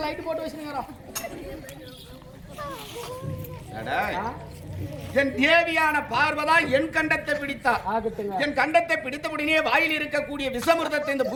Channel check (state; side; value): identical; both; correlation 1.00